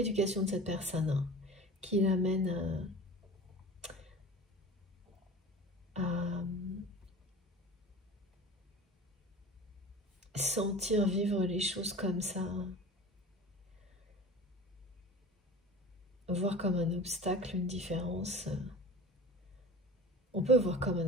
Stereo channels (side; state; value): both; normal; correlation 0.37